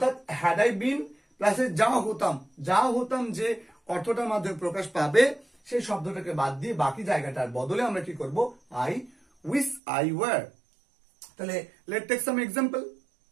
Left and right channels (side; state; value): left; drops out; at 9.8 s